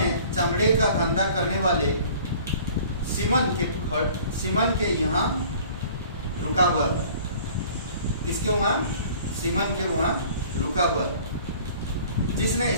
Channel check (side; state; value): both; inverted; correlation -0.49